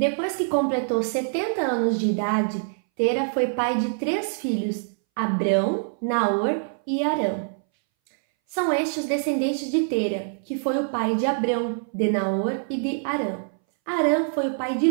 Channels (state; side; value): silent; left; 61 dB below the other